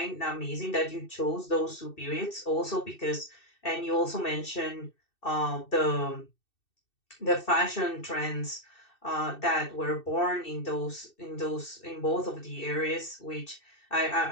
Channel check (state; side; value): late; right; 2.6 ms